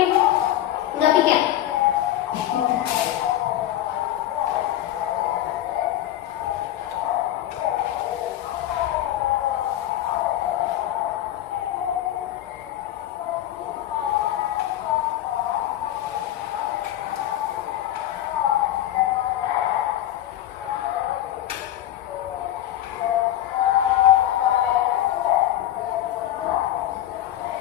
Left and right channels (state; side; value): quieter; right; 12.8 dB